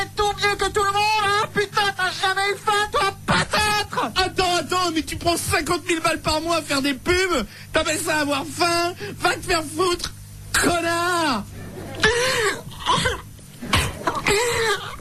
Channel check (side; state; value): both; identical; correlation 1.00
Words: tout mieux que tout le monde, hein? Putain, t'as jamais eu faim, toi, peut-être? Attends, mais tu prends 50 000 balles par mois à faire des pubs? T'appelles ça avoir faim? Va te faire foutre, connard!